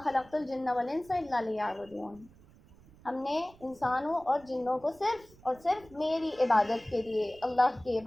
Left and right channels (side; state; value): right; noise; rumble, 25 dB below the sound